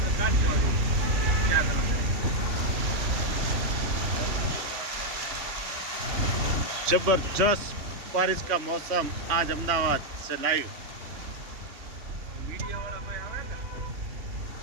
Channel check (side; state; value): left; late; 3.1 ms